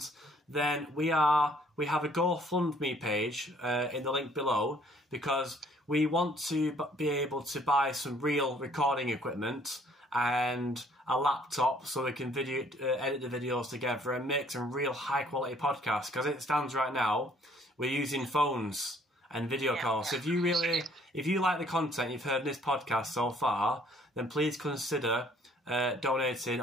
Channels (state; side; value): normal; both; correlation 0.60